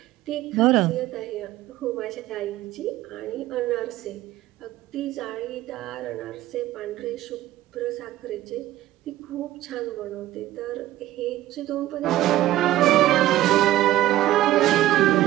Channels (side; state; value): left; quieter; 14.8 dB